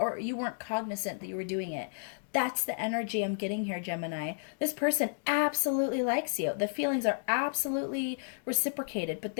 you weren't cognizant that you were doing it. That's the energy I'm getting here, Gemini. This person absolutely likes you. The feelings are absolutely reciprocated, but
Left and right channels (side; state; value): right; silent; digital silence